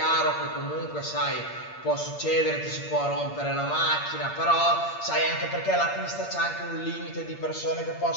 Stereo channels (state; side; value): late; right; 8.6 ms